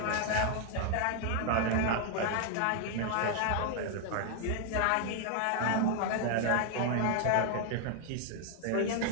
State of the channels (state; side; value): different; both; correlation 0.00